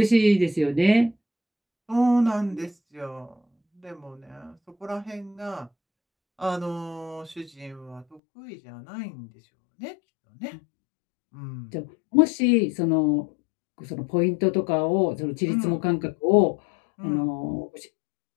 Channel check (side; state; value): right; drops out; at 8.2 s